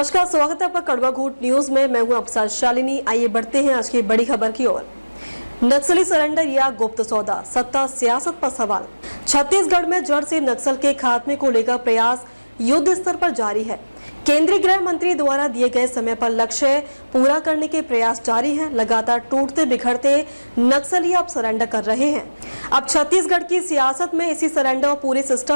स्वागत है आपका कड़वा घूट न्यूज में। मैं हूं आपके शालिनी। आइए बढ़ते हैं आज की बड़ी खबर की ओर। नक्सली सरेंडर या गुप्त सौदा, सत्ता सियासत पर सवाल। छत्तीसगढ़ में जड़ से नक्सल के खात्मे को लेकर प्रयास युद्ध स्तर पर जारी है। केंद्रीय गृह मंत्री द्वारा दिए गए समय पर लक्ष्य पूरा करने के प्रयास जारी हैं। लगातार टूटते बिखरते नक्सली अब सरेंडर कर रहे हैं। अब छत्तीसगढ़ की सियासत में इसी सरेंडर और पूरे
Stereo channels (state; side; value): inverted; both; correlation -1.00